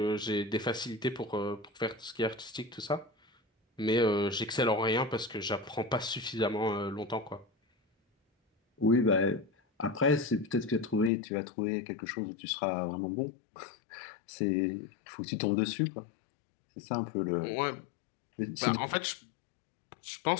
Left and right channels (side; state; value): right; drops out; at 11.1 s